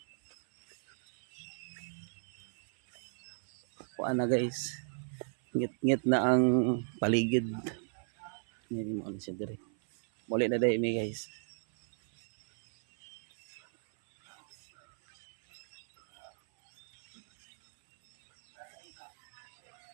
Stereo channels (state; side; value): silent; left; 54 dB below the other